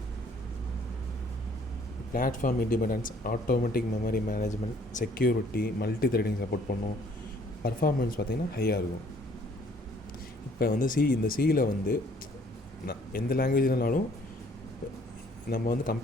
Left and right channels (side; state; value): both; normal; correlation 0.60